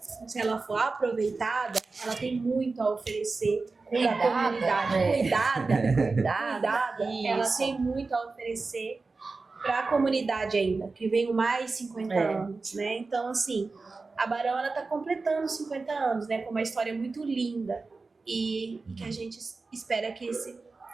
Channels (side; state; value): left; quieter; 3.9 dB